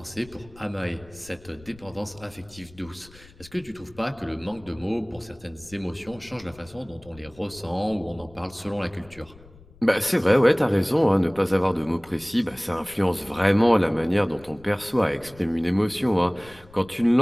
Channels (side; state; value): left; noise; rumble, 23 dB below the sound